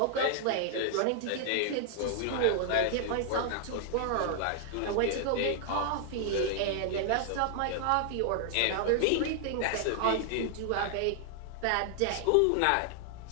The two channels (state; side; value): different; both; correlation 0.00